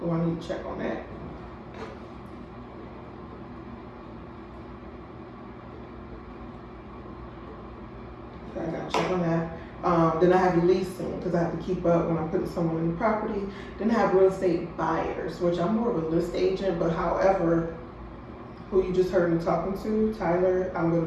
I need to check on that. So I gotta check on that. Then I have leasing because I have to keep up when I'm putting someone in the property. Then I have real estate buyers, which I'm more of a list agent, but however, who you just heard me talking to, Tyler, I'm going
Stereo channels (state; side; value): identical; both; correlation 1.00